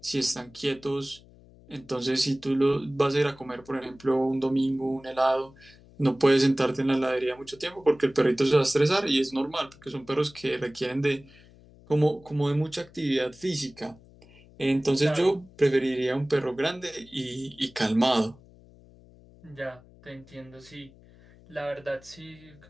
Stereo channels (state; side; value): noise; left; hum, 24 dB below the sound